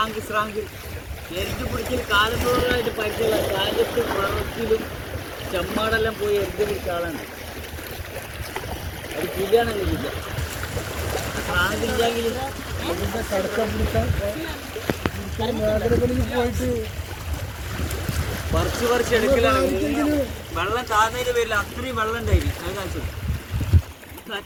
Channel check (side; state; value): both; identical; correlation 1.00